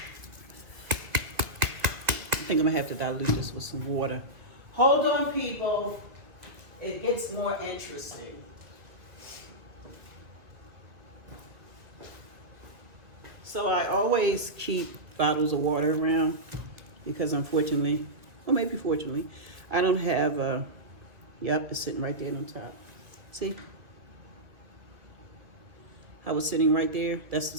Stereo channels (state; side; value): late; left; 1.8 ms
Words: I think I'm going to have to dilute this with some water. Hold on, people. It gets more interesting. So I always keep bottles of water around because unfortunately, or maybe fortunately, I don't have a, yep, it's sitting right there on top. See? How it's sitting right there? That's the